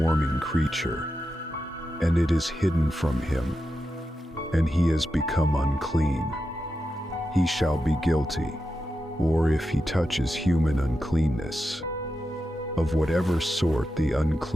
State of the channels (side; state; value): both; normal; correlation 0.89